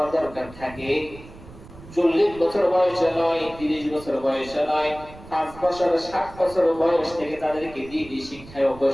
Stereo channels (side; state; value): right; noise; rumble, 18 dB below the sound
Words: দরকার থাকে, 40 বছর বয়সে নয়, 30 বছর বয়সে নয়, 5 বছর 7 বছর বয়স থেকে তাদেরকে দিনই শিক্ষায়